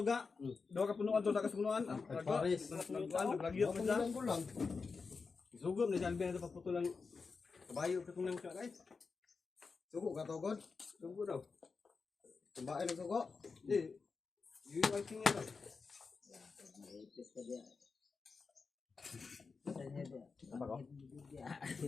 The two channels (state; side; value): quieter; right; 4.7 dB